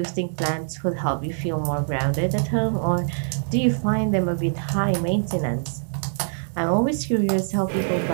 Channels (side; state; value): left; silent; digital silence